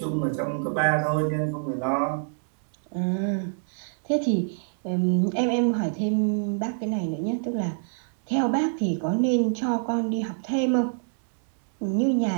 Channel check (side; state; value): left; silent; digital silence